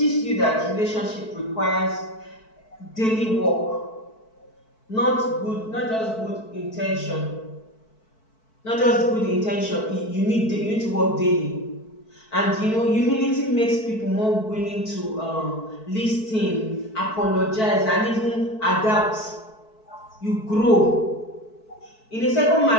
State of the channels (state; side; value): late; right; 4.6 ms